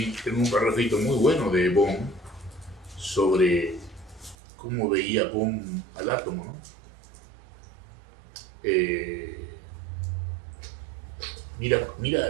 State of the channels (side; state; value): left; drops out; at 4.4 s